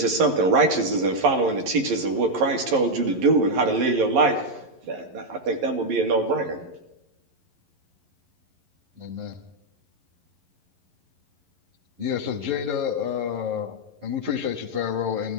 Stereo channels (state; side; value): late; left; 11 ms